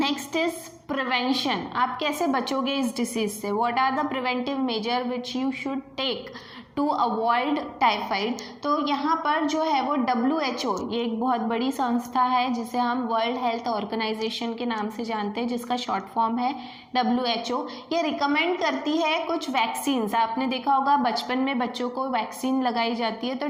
इज प्रिवेंशन। आप कैसे बचोगे इस डिसीज से, what are the preventive measure which you should take to avoid typhoid. तो यहाँ पर जो है वो WHO, ये एक बहुत बड़ी संस्था है जिसे हम वर्ल्ड हेल्थ ऑर्गेनाइजेशन के नाम से जानते हैं, जिसका शॉर्ट फॉर्म है WHO। ये रिकमेंड करती है कुछ वैक्सीन्स। आपने देखा होगा बचपन में बच्चों को वैक्सीन लगाई जाती है, तो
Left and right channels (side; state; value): both; identical; correlation 1.00